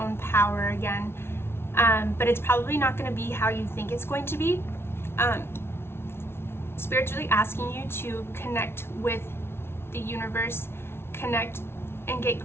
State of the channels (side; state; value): right; late; 0.12 ms